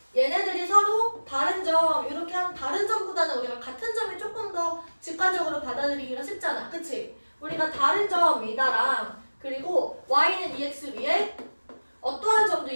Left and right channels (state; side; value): inverted; both; correlation -1.00